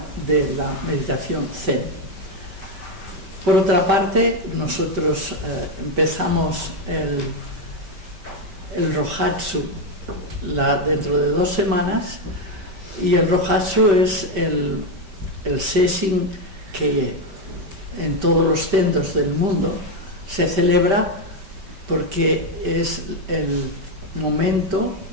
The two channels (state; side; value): late; left; 5.1 ms